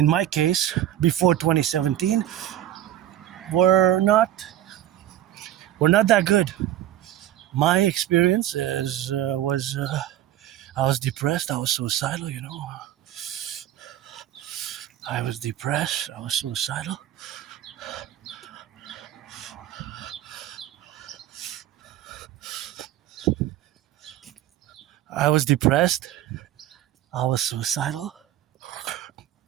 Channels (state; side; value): quieter; left; 12.5 dB